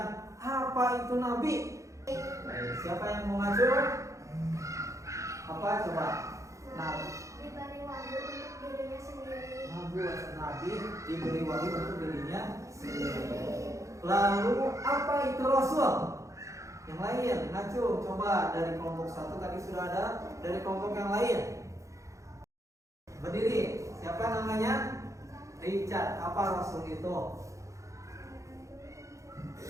apa itu Nabi? Siapa yang mau maju? Apa coba? Diberi wahyu untuk dirinya sendiri. Nabi diberi wahyu untuk dirinya sendiri. Lalu apa itu Rasul? Yang lain, maju. Coba dari kelompok 1 tadi sudah ada, dari kelompok yang lain. Berdiri, siapa namanya? Richard. Apa Rasul itu?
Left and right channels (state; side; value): late; left; 0.15 ms